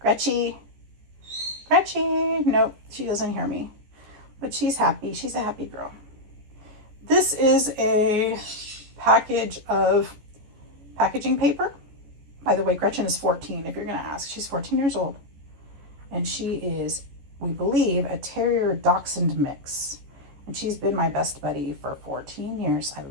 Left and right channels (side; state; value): left; late; 14 ms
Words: Gretchy. Nope, she doesn't hear me. But she's happy. She's a happy girl. This is a package of packaging paper. By the way, Gretchen is 14, if you're going to ask. She's 14 years old. And she is, we believe, a Terrier Dachshund mix. And she's been my best buddy for 14 years. I